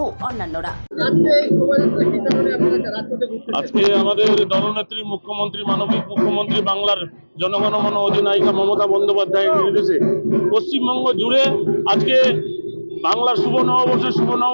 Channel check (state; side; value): inverted; both; correlation -1.00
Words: অন্যান্যরা। আজকে আমাদের দলনেত্রী মুখ্যমন্ত্রী, মানবিক মুখ্যমন্ত্রী, বাংলার জনগণমন অধিনায়িকা মমতা বন্দ্যোপাধ্যায়ের নির্দেশে পশ্চিমবঙ্গ জুড়ে আজকে বাংলার শুভ